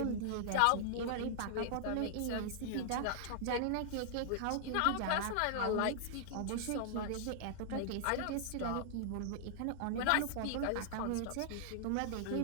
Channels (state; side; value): different; both; correlation -0.01